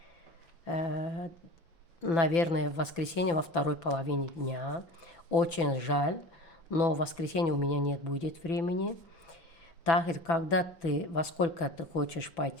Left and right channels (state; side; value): late; right; 6.0 ms